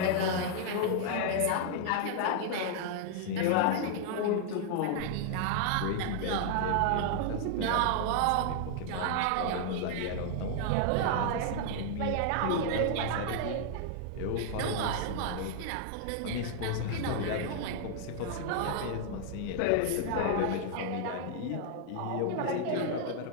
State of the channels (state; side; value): different; both; correlation 0.00